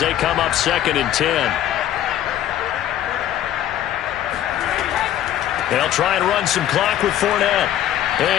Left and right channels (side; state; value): right; quieter; 11.8 dB